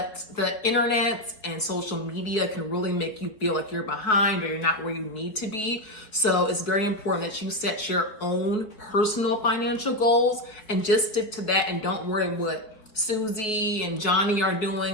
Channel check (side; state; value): right; late; 4.7 ms